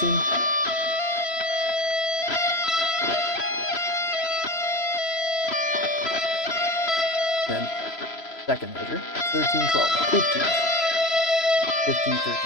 Then second measure, 13, 12, 15. 15, 13,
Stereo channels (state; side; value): late; right; 3.0 ms